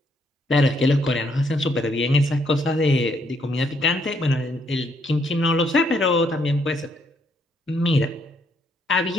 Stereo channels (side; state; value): both; normal; correlation 0.72